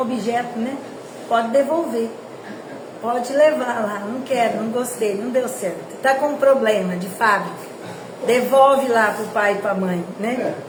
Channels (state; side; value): identical; both; correlation 1.00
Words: né? Pode devolver. Pode levar lá. Não quero, não gostei, não deu certo. Tá com um problema de fábrica. Devolve lá pro pai e pra mãe, né?